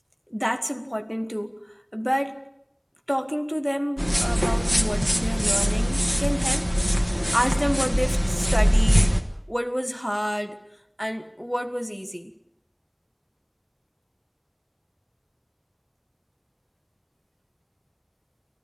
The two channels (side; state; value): both; identical; correlation 1.00